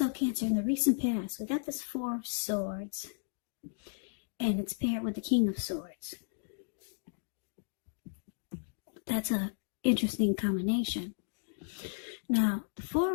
Cancer, in the recent past, we got this Four of Swords, and it's paired with the King of Swords. That's an interesting combination. Now, the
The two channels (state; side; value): silent; right; digital silence